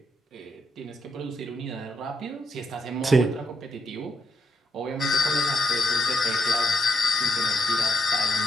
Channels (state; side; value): normal; both; correlation 0.79